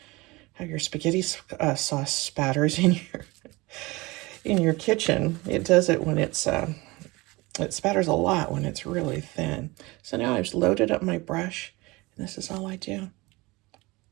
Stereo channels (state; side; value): quieter; left; 22.8 dB